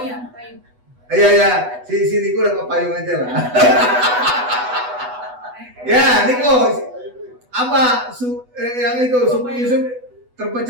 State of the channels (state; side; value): late; left; 8.1 ms